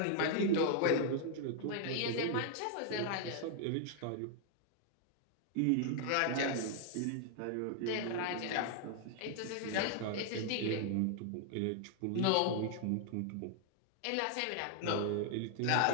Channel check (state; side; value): different; both; correlation 0.00